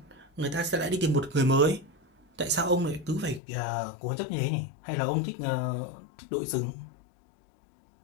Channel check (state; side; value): drops out; right; at 3.4 s